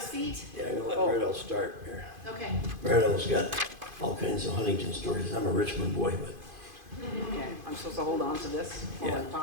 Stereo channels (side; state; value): left; late; 2.5 ms